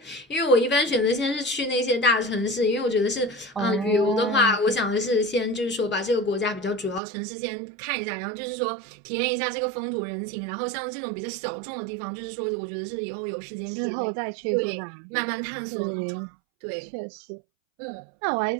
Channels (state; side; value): drops out; left; at 7.0 s